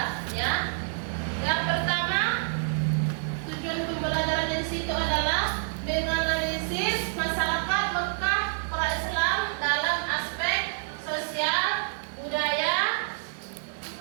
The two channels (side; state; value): left; silent; digital silence